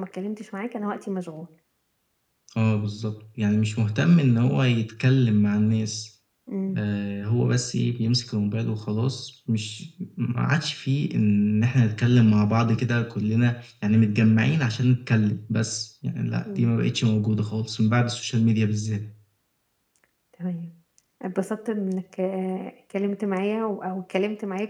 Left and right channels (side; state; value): both; identical; correlation 1.00